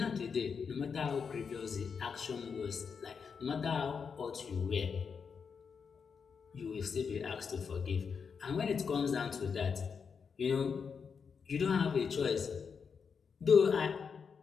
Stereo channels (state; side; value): quieter; right; 6.0 dB